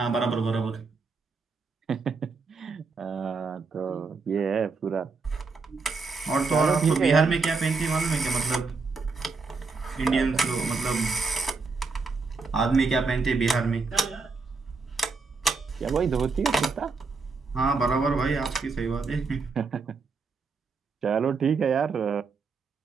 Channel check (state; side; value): quieter; left; 4.4 dB